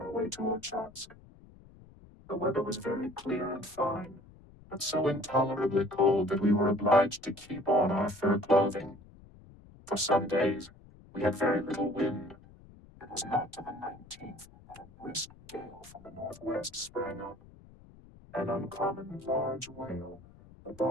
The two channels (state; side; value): noise; left; rumble, 22 dB below the sound